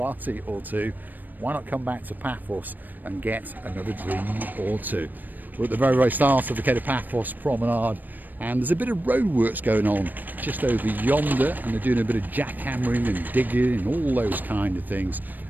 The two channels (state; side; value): late; left; 0.088 ms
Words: or two. Why not come back to Paphos and get another dream or two? We're at the very, very start of the Cape of Paphos promenade, and there's a bit of roadworks going on just over yonder, and they're doing a bit of jackhammering and digging and all those kind of things.